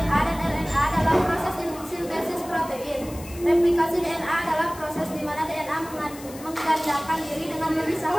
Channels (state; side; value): noise; left; hiss, 17 dB below the sound